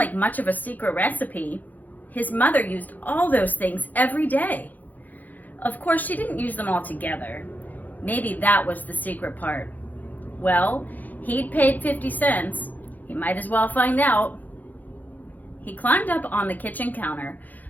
much of a secret recipe. His mother used all those things every day. Of course, she didn't use them all together. Maybe that was the secret part. Well, he'd paid 50 cents. He might as well find out. He climbed up on the kitchen counter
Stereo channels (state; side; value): late; right; 0.083 ms